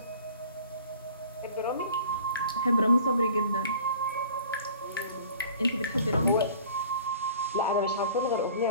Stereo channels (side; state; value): both; inverted; correlation -0.48